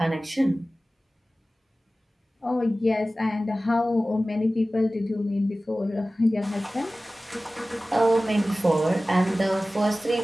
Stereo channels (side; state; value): both; normal; correlation 0.96